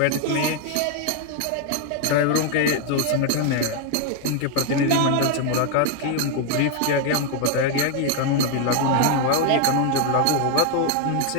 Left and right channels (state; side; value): different; both; correlation 0.00